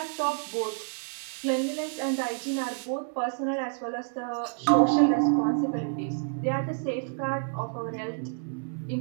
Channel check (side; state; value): left; silent; digital silence